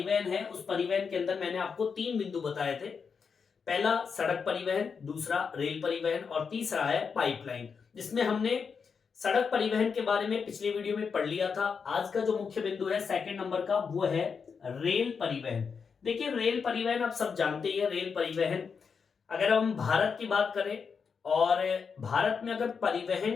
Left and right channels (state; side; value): quieter; right; 5.9 dB